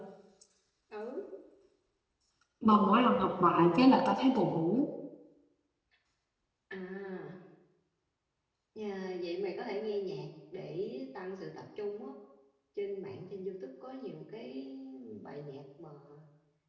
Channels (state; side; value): identical; both; correlation 1.00